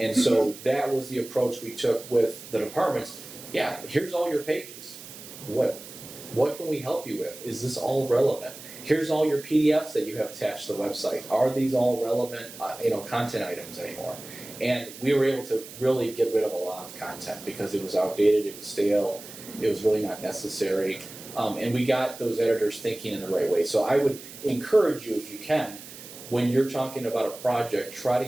so that was the approach we took with the departments. Yeah, here's all your pages. What can we help you with? Is this all relevant? Here's all your PDFs that you have attached to the website. Are these all relevant, content items anymore? And we were able to really get rid of a lot of content because it was outdated, it was stale, it was really not necessary. And we got those editors thinking in the right way. So I would encourage you, if you can, when you're talking about a project, try to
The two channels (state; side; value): noise; right; hiss, 15 dB below the sound